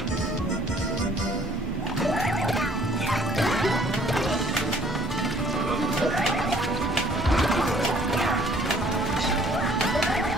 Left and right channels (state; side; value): normal; both; correlation 0.58